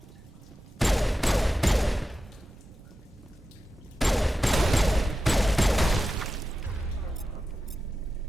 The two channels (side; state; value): both; normal; correlation 0.92